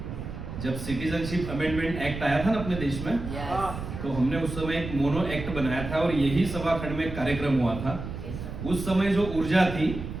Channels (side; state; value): right; noise; rumble, 8 dB below the sound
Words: जब सिटीजनशिप अमेंडमेंट एक्ट आया था ना अपने देश में, तो हमने उस समय एक मोनो एक्ट बनाया था और यही सभाखंड में एक कार्यक्रम हुआ था। उस समय जो ऊर्जा थी